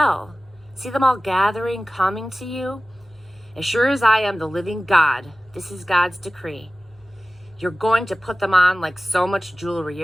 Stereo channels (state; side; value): normal; both; correlation 0.97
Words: See them all gathering, coming to you? As sure as I am the living God, this is God's decree. You're going to put them on like so much jewelry.